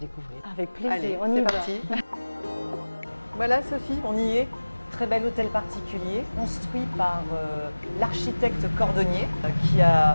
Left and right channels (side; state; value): both; inverted; correlation -1.00